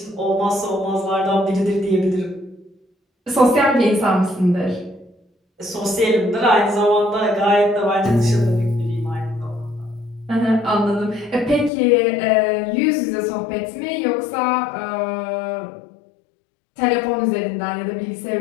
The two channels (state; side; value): drops out; right; at 11.7 s